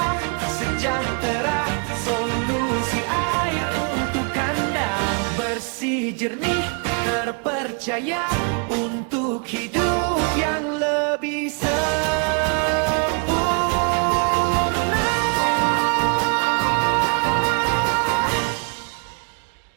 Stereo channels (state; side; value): quieter; left; 36.3 dB